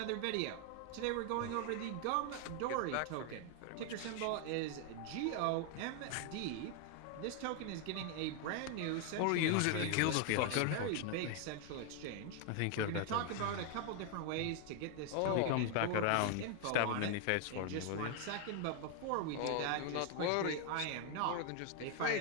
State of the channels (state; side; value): different; both; correlation 0.00